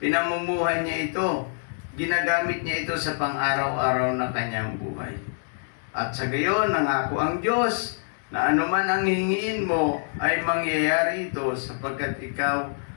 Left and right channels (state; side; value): silent; right; digital silence